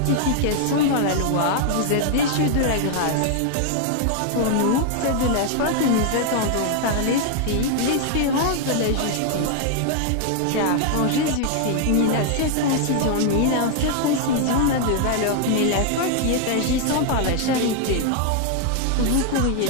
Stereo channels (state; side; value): different; both; correlation 0.00